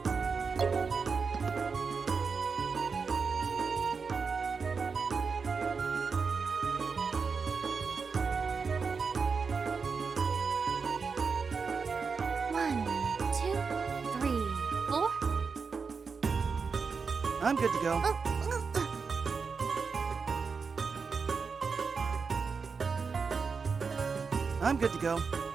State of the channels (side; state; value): left; quieter; 5.2 dB